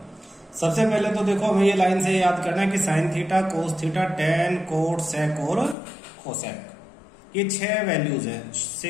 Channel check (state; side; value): drops out; right; at 5.8 s